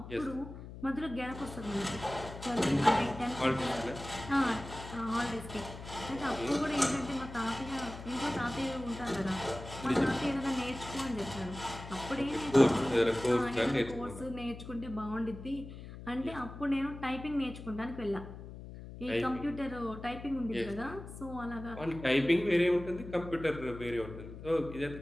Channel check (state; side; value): noise; left; hum, 12 dB below the sound